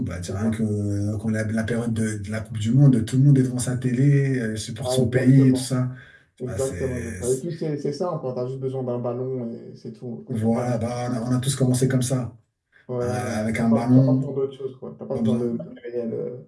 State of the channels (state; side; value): identical; both; correlation 1.00